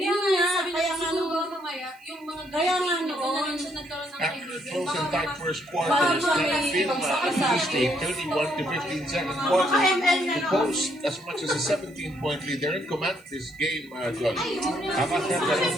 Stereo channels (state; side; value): noise; right; hiss, 30 dB below the sound